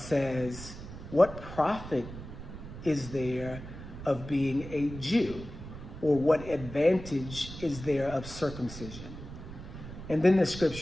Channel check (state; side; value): noise; right; rumble, 12 dB below the sound